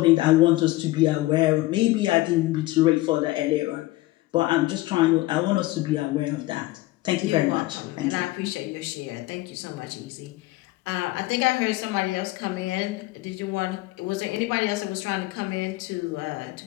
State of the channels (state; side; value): quieter; right; 18.8 dB